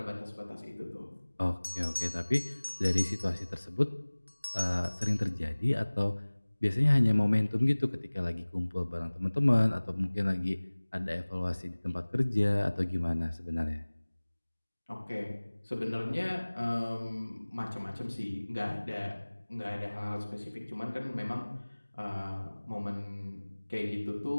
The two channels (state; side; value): inverted; both; correlation -1.00